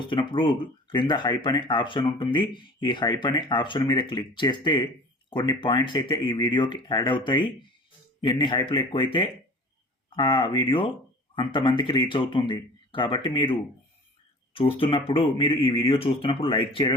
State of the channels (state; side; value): normal; both; correlation 0.41